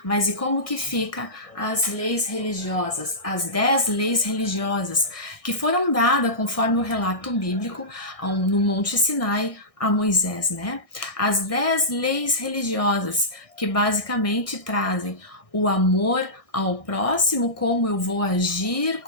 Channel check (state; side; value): late; right; 1.6 ms